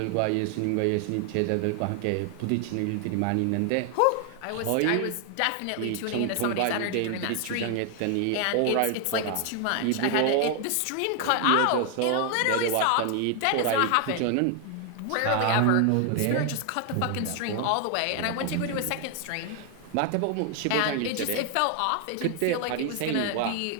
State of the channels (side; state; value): both; different; correlation 0.00